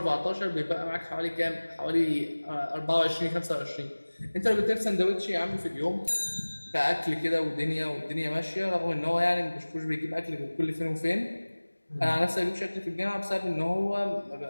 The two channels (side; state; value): both; inverted; correlation -1.00